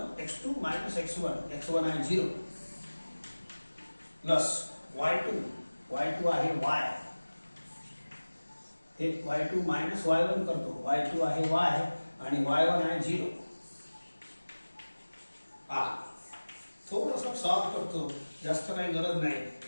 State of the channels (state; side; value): inverted; both; correlation -1.00